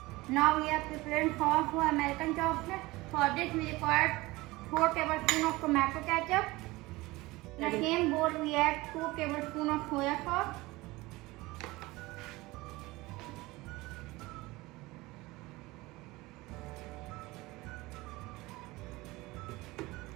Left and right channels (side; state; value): left; quieter; 20.8 dB